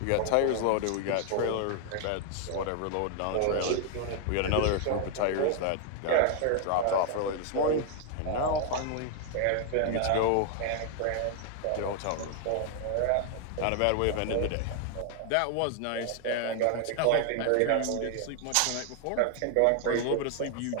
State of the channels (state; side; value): different; both; correlation 0.00